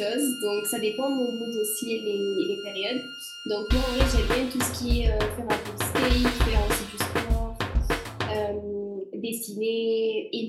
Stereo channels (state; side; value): identical; both; correlation 1.00